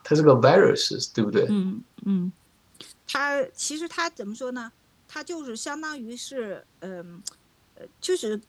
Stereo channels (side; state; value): both; identical; correlation 1.00